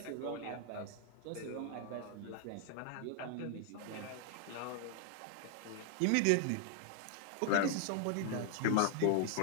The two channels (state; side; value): different; both; correlation 0.00